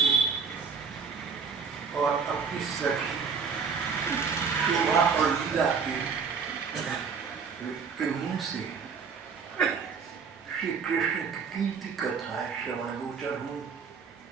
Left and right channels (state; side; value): quieter; left; 5.8 dB